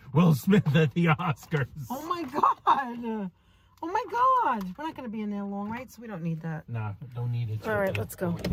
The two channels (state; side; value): identical; both; correlation 1.00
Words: Will Smith at the Oscars. Oh my God. Oh my God. We're not going to be in there long, right? So we don't need that. Nah, don't need it. All right, let's go.